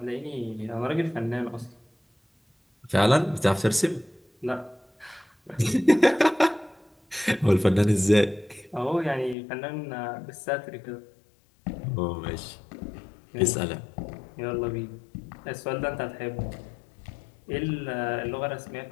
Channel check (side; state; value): right; drops out; at 9.3 s